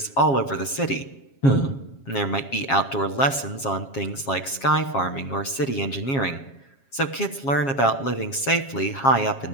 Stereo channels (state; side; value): late; right; 7.3 ms